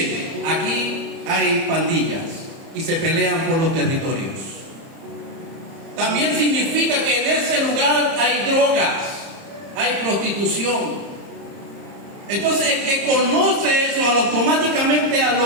aquí hay pandillas y se pelean por los territorios. También significa que en ese lugar hay drogas, hay prostitución. Entonces el que conoce eso, automáticamente a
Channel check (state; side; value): late; left; 30 ms